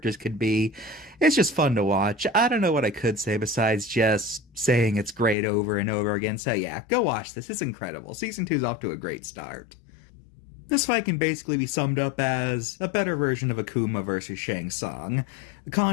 could be. It's just fun to watch. I don't know what I could say besides just saying it's great over and over again, so yeah, go watch this, it's incredible. Season 2 is off to a great start. This fight can basically be summed up as a better version of Akuma versus Shang Tsung. The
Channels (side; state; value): right; drops out; at 5.4 s